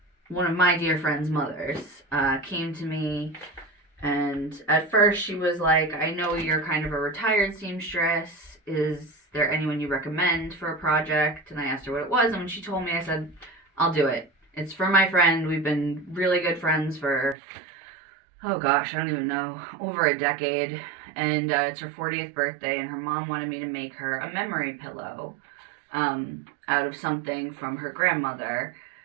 one of my dear friend's mothers, came to me, and at first she was like, I know you're kind of a retired seamstress. Is there anyone you recommend for a project? And I asked her what it was, and when she told me, I said, I'll do it. It's for my friend. We've been really good friends for, oh gosh, I don't even know, over a decade. And it's her 40th birthday, and her mom wanted me to make her a memory pillow out of something from her grandmother,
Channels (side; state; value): left; drops out; at 17.4 s